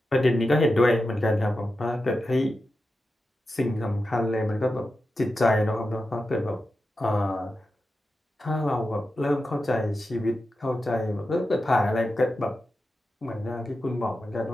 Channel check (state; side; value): normal; both; correlation 0.91